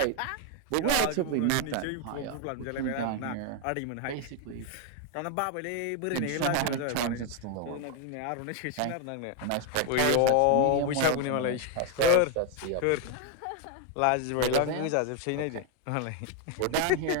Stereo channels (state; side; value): different; both; correlation 0.01